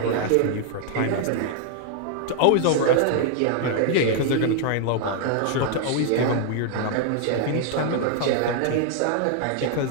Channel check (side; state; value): both; different; correlation 0.00